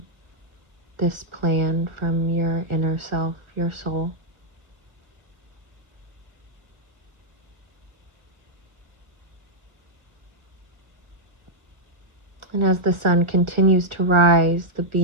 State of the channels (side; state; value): left; late; 1.6 ms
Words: this plan from your inner self, your soul. And as the sun continues to rise, the